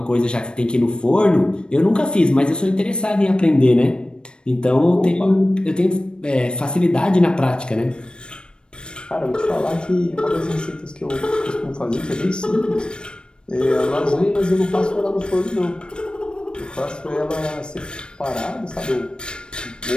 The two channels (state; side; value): late; right; 0.053 ms